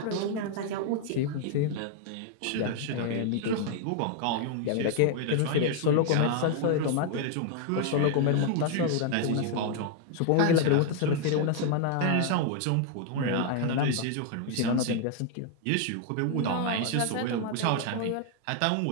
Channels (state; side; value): different; both; correlation 0.00